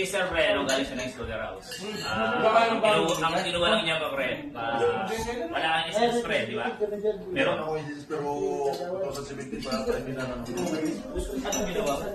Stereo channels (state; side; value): identical; both; correlation 1.00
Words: Sir Pre, galing siya ng Slaughterhouse. Ang kinuha lang niya pa, Pre, wala kang SS, Pre, di ba? Meron ako yung pero 2017 pa tayo minanang dito. Anong ginawa mo,